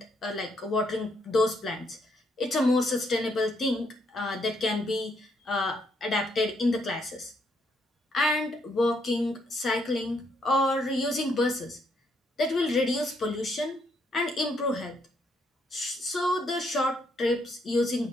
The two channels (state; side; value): normal; both; correlation 0.73